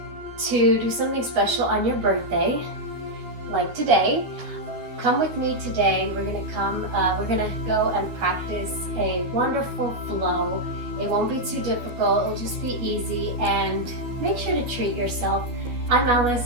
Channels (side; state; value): left; late; 12 ms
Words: to do something special on your birthday, like today, come with me today. We're gonna go and practice a wonderful flow. It won't be too difficult, it'll just be easy, and make sure to treat yourself. I'm